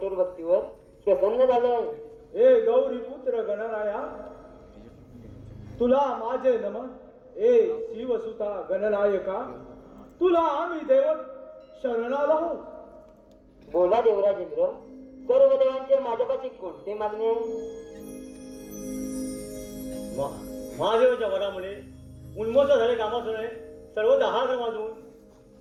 भक्तीवर प्रसन्न झालो आहे. हे गौरी पुत्र गणराया, तुला माझे नमन. ए शिवसुता गणनायका, तुला आम्ही देव शरणाला आहोत. बोला देवराजेंद्र, सर्व देवांचे माझ्यापाशी कोणते मागणे आहे? महादेवाच्या वरामुळे उन्मत्त झाले कामासुराने सर्व हात वाजवून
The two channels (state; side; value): identical; both; correlation 1.00